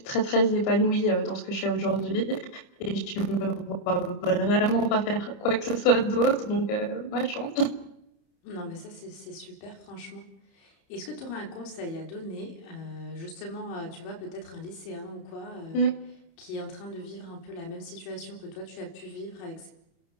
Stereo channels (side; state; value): right; late; 30 ms